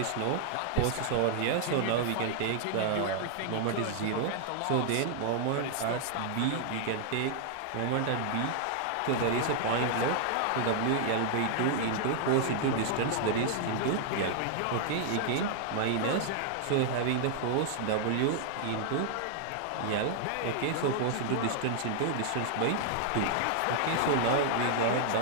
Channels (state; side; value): different; both; correlation -0.01